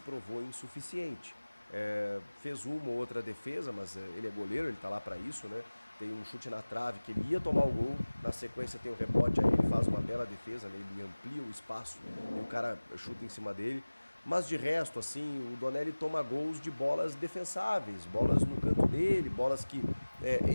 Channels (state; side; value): inverted; both; correlation -1.00